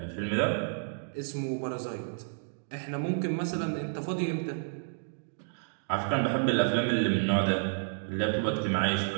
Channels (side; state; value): left; silent; digital silence